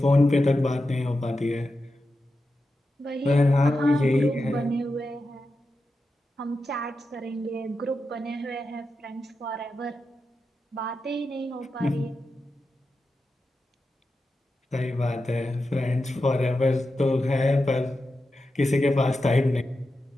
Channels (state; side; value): normal; both; correlation 0.90